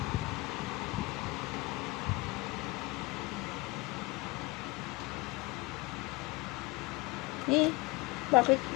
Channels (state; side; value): quieter; right; 23.8 dB